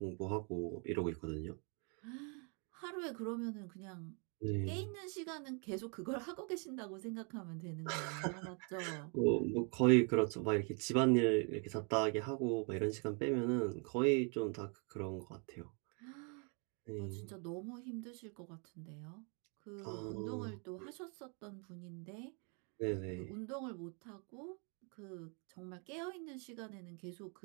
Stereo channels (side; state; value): left; quieter; 37.3 dB